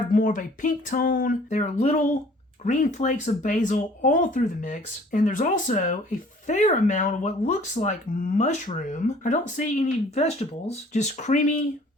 more of a pink tone. There are little green flakes of basil all through the mix. And there's also a fair amount of what looks like mushroom. I don't see any vegetables, just creamy,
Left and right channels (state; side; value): normal; both; correlation 0.54